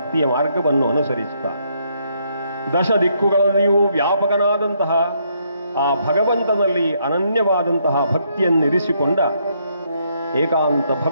ಮಾರ್ಗವನ್ನು ಅನುಸರಿಸುತ್ತಾ ದಶ ದಿಕ್ಕುಗಳಲ್ಲಿಯೂ ವ್ಯಾಪಕನಾದಂತಹ ಆ ಭಗವಂತನಲ್ಲಿ ಅನನ್ಯವಾದಂತಹ ಭಕ್ತಿಯನ್ನಿರಿಸಿಕೊಂಡ ಏಕಾಂತ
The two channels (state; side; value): inverted; both; correlation -0.73